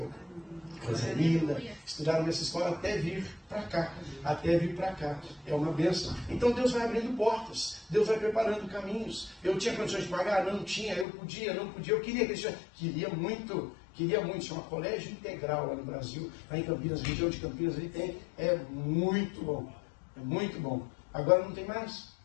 Coisa linda. Estudaram nessa escola até vir para cá. É uma bênção. Então Deus vai abrindo portas. Deus vai preparando caminhos. Eu tinha condições de pagar? Não tinha. Eu podia, não podia. Eu queria que queria muito. Chama Colégio Integral lá no Brasil. Lá em Campinas, região de Campinas, ali tem. É muito bom. É muito bom. Agora não tem mais.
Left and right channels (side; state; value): right; drops out; at 11.1 s